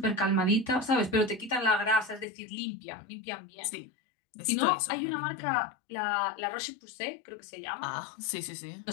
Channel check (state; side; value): drops out; right; at 2.2 s